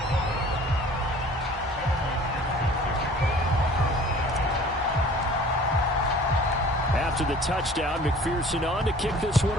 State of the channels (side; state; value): both; normal; correlation 0.48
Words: After the touchdown, McPherson on to kick this one